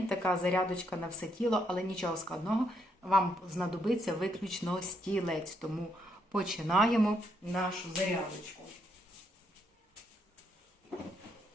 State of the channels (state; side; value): normal; both; correlation 0.76